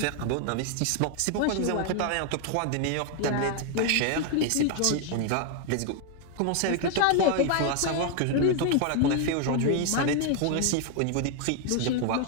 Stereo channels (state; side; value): different; both; correlation 0.00